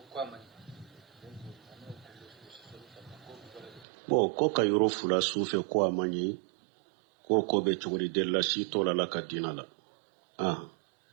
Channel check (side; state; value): left; drops out; at 3.9 s